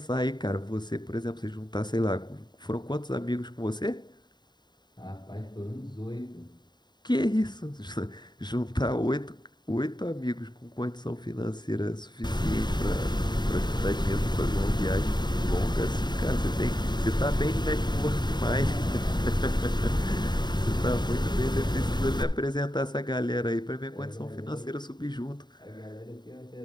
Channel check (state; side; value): late; right; 0.21 ms